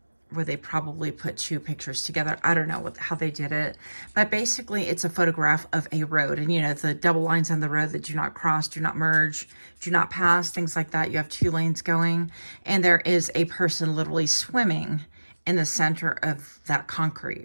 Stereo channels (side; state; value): both; inverted; correlation -1.00